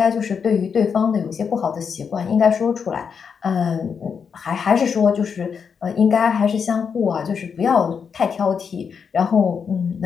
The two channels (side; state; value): right; quieter; 6.4 dB